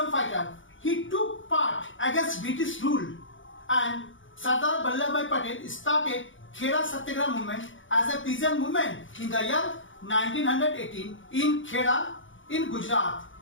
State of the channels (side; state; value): right; late; 0.56 ms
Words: fighter. He took part against British rule, and Sardar Vallabhbhai Patel started Kheda Satyagraha movement as a peasant movement in the year 1918 in Kheda in Gujarat.